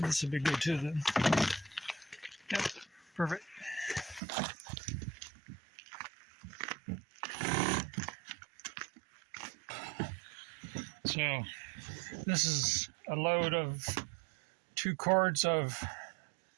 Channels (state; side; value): drops out; left; at 4.2 s